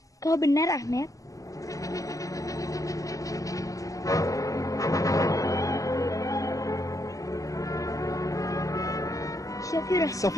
Kau benar, Ahmed.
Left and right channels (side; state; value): right; late; 0.16 ms